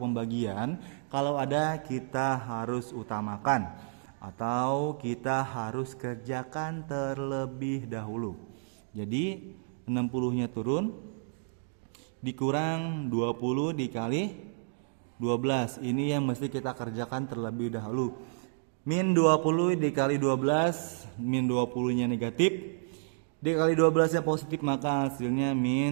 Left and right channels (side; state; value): left; silent; digital silence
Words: Kalau ada, kita harus utamakan atau kita harus kerjakan terlebih dahulu. Jadi 60-nya turun, dikurang 20 dikali 12. Ini yang mesti kita kerjakan terlebih dahulu. Min 20 dikali 12, min 20-nya negatif, dikali 12-nya positif, maka hasilnya